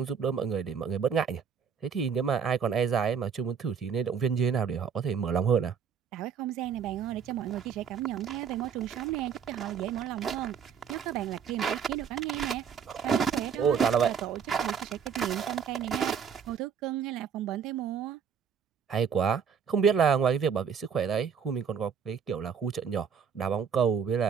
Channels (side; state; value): left; quieter; 7.1 dB